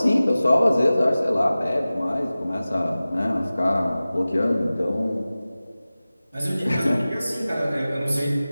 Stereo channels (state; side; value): inverted; both; correlation -0.97